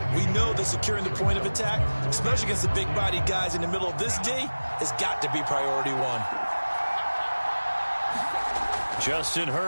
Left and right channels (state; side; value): inverted; both; correlation -1.00